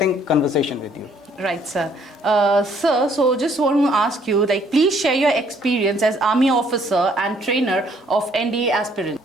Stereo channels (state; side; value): normal; both; correlation 0.64